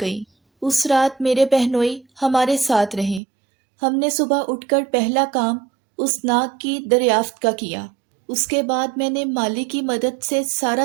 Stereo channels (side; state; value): left; drops out; at 3.2 s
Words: اس رات میرے بہنوئی ہمارے ساتھ رہے۔ ہم نے صبح اٹھ کر پہلا کام اس ناگ کی دریافت کا کیا۔ اس کے بعد میں نے مالی کی مدد سے سارا